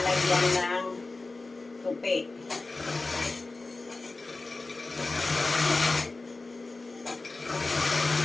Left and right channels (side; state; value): right; quieter; 3.4 dB